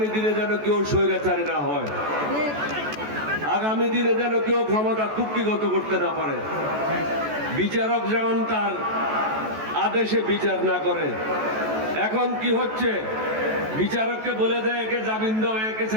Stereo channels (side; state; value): left; late; 14 ms